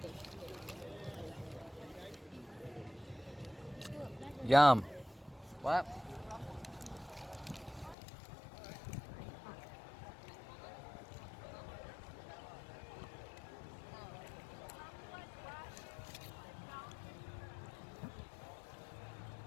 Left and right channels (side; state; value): right; drops out; at 8.0 s